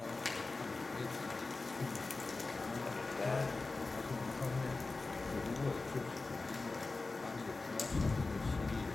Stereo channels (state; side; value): quieter; right; 3.6 dB